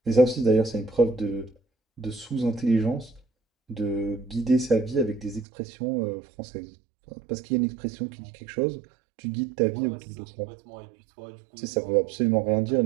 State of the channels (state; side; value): drops out; left; at 5.5 s